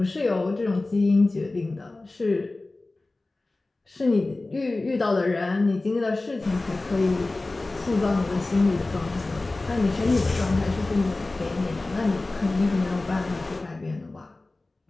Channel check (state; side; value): quieter; right; 3.1 dB